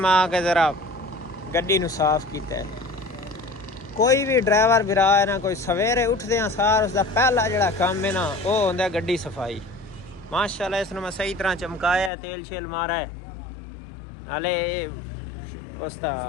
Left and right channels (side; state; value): right; drops out; at 12.1 s